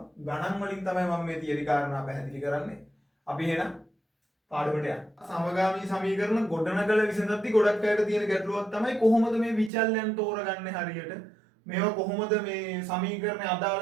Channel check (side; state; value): left; drops out; at 9.7 s